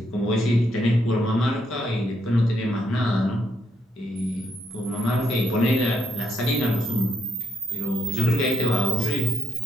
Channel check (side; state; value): both; normal; correlation 0.76